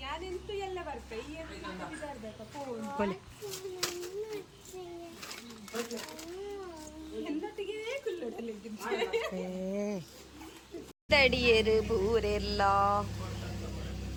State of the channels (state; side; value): identical; both; correlation 1.00